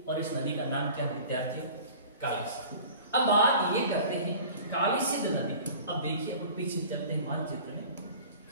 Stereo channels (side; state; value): both; inverted; correlation -0.43